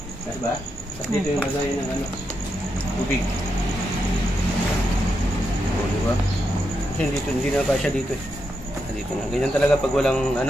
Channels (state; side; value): normal; both; correlation 0.84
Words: Diba? At dito yung lagayan ng tubig. O, diba? Kasi hindi na pa siya dito eh. Dito na. Ganyan talaga pag walang